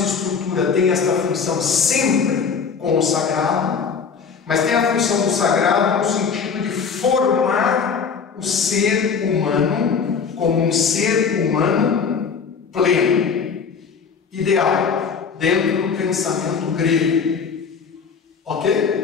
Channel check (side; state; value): right; quieter; 5.9 dB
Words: estrutura, tem esta função sempre com o sagrado. Mas tem a função do sagrado no sentido de formar o ser humano como um ser humano pleno, ideal, dentro do pensamento grego.